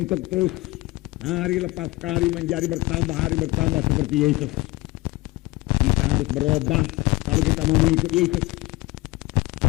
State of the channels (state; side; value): quieter; right; 21.2 dB